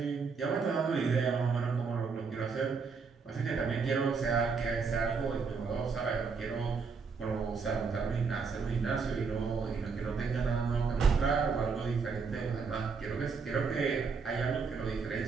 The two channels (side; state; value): left; quieter; 5.2 dB